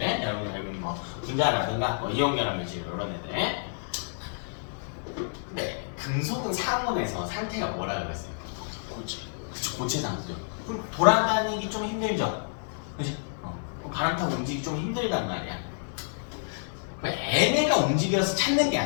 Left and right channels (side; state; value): right; silent; digital silence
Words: 여러분 뭐 분자라든가 뭐 이온 결합 물질 이런 애들. 근데 금속은 상온에서 상태가 뭐라고 그랬어요? 고체. 그쵸, 고체 상태죠. 그럼 돌아다니기 좀 힘들죠. 그지? 바람 타고 움직이기 좀 힘들단 말이야. 얘네가 움직여서 찾는 게